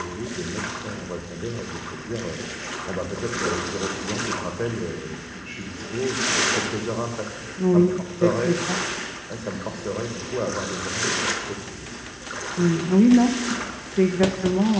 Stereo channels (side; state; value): both; identical; correlation 1.00